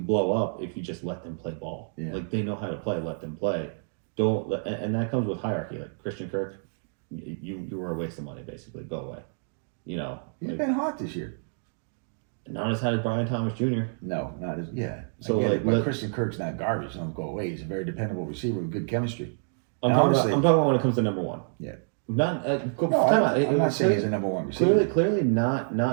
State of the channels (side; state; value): left; silent; digital silence